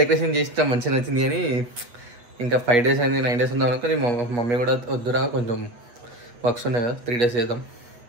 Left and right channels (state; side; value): late; left; 8.6 ms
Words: డెకరేషన్ చేస్తాం, మంచిగా నచ్చింది. కానీ ఇంకా 5 డేస్ అయింది, 9 డేస్ ఉందాం అనుకో. మమ్మీ కూడా వద్దురా కొంచెం వర్క్స్ ఉన్నాయి కదా, 3 డేస్ చేద్దాం